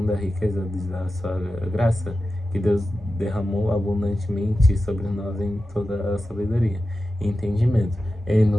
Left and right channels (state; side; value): normal; both; correlation 0.93